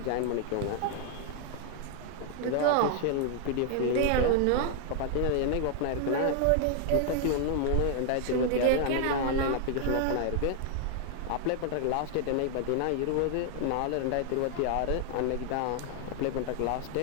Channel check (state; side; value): different; both; correlation 0.00